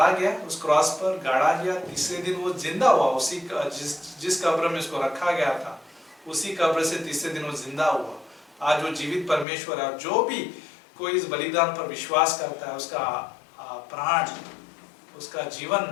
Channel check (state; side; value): drops out; right; at 9.5 s